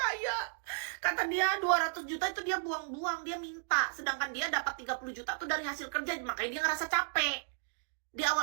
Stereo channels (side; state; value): left; silent; digital silence